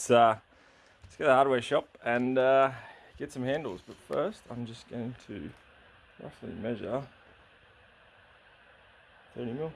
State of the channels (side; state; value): both; identical; correlation 1.00